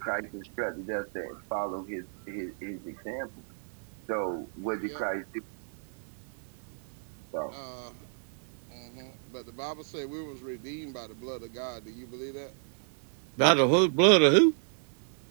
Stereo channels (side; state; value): left; silent; 57 dB below the other